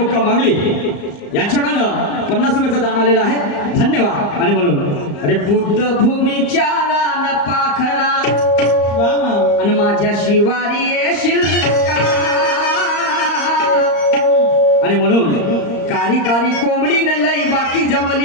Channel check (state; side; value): late; right; 34 ms